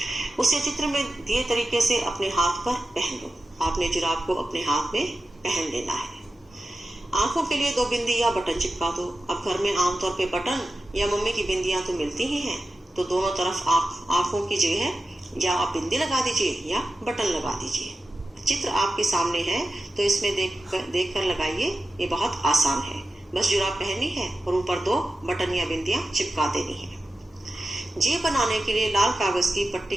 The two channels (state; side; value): normal; both; correlation 0.93